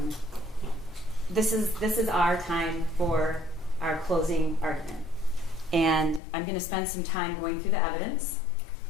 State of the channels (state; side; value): drops out; right; at 6.2 s